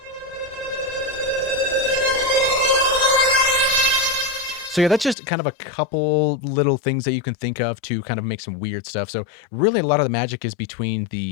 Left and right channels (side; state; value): right; drops out; at 5.2 s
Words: So yeah, that's just kind of a couple little things that you can think of to kind of make some weird stuff. So really a lot of the magic is between